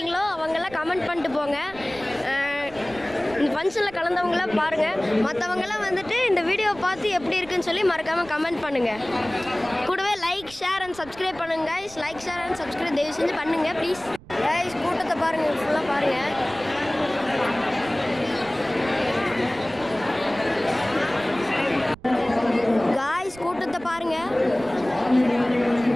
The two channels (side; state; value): right; noise; rumble, 20 dB below the sound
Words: அவங்கெல்லாம் கமெண்ட் பண்ணிட்டு போங்க. இந்த ஃபங்க்ஷனில் கலந்தவங்களாம் பாருங்கள். மற்றவங்களாம் வந்துட்டு இந்த வீடியோவை பார்த்து எப்படி இருக்குன்னு சொல்லி மறக்காமல் கமெண்ட் பண்ணுங்கள். கூடவே லைக் ஷேர் அண்ட் சப்ஸ்கிரைப் பண்ணுங்கள் guys. Like share and subscribe தயவு செஞ்சு பண்ணுங்கள் ப்ளீஸ். கைஸ் கூட்டத்தை பாருங்கள், ஃபுல்லாக பாருங்கள். காய்ஸ் கூட்டத்தை பாருங்கள்.